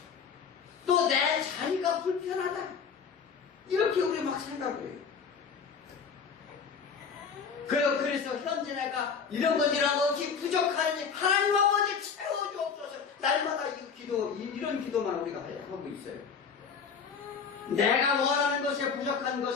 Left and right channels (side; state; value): right; quieter; 6.2 dB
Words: 또 내 자리가 불편하다. 이렇게 우리 막 생각을 해요. 그래서 현재 내가 이런 것 없이 부족하니 하나님 아버지 채워주옵소서. 날마다 이런 기도만 우리가 하고 있어요. 내가 원하는 것에 부족한